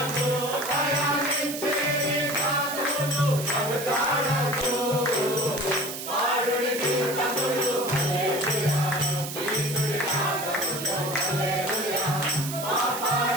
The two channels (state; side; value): noise; right; hiss, 8 dB below the sound